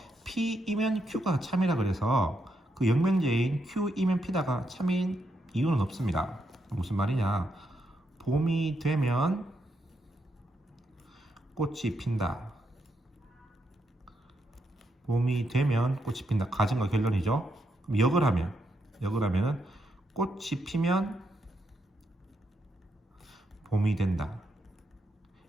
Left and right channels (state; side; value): normal; both; correlation 0.80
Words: P이면 Q가 참이라 그래서 그 역명제인 Q이면 P다가 참인 이유는 없습니다. 무슨 말이냐? 봄이 되면 꽃이 핀다. 봄이 되면 꽃이 핀다. 가정과 결론이죠. 그럼 역을 하면은 꽃이 피면 봄이 된다.